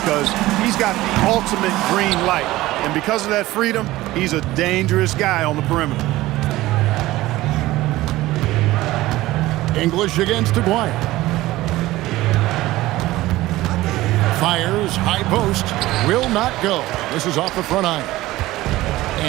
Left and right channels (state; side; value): quieter; left; 17.4 dB